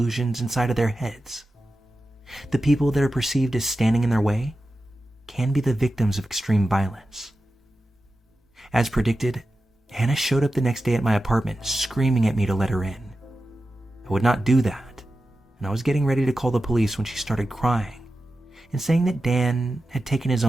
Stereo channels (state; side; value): normal; both; correlation 0.92